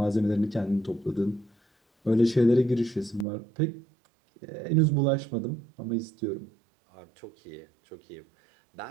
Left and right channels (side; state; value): left; drops out; at 3.2 s